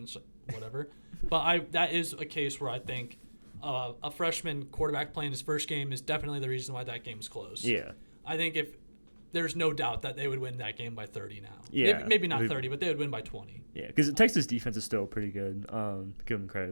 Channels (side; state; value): both; inverted; correlation -1.00